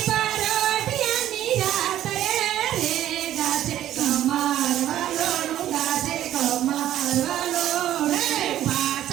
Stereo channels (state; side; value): quieter; left; 12.3 dB